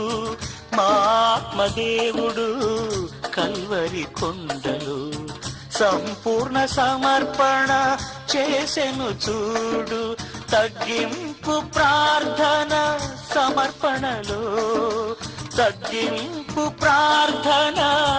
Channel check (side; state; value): both; identical; correlation 1.00